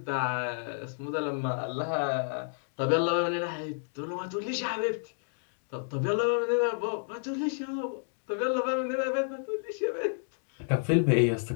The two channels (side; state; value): right; silent; digital silence